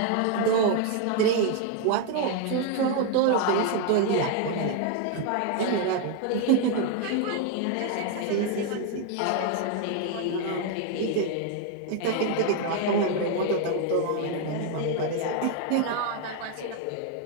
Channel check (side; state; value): both; different; correlation 0.01